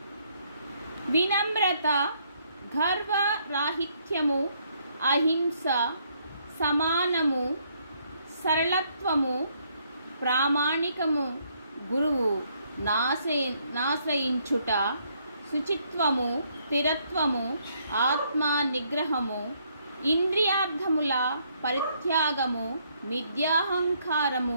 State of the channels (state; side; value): inverted; both; correlation -0.70